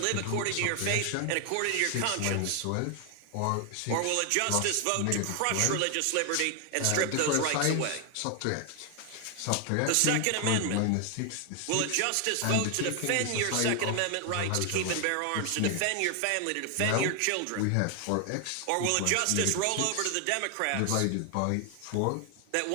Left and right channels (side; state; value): both; different; correlation 0.00